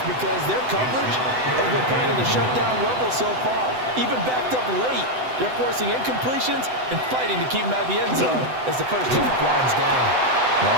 because their coverage has been playing at a shutdown level so far. Even backed up late, they're forcing incompletions and fighting to keep them at the end zone as the first half winds down.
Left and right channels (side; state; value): left; late; 7.9 ms